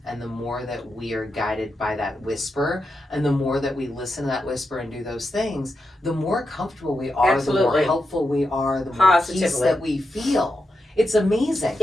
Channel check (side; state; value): both; normal; correlation 0.87